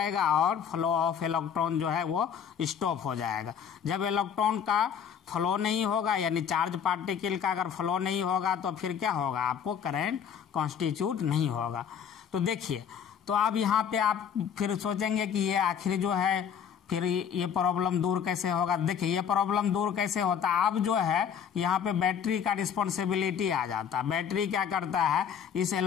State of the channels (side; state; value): right; quieter; 7.9 dB